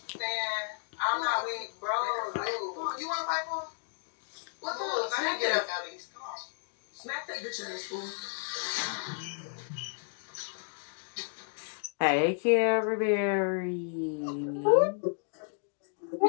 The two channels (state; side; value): silent; right; digital silence